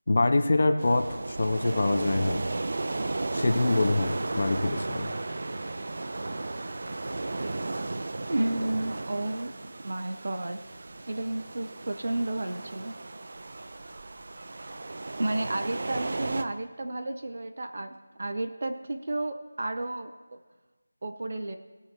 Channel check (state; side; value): inverted; both; correlation -0.96